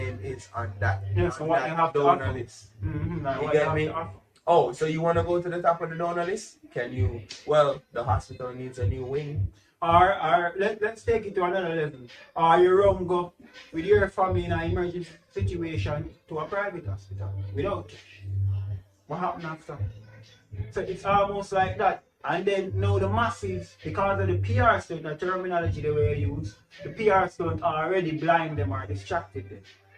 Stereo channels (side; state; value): both; identical; correlation 1.00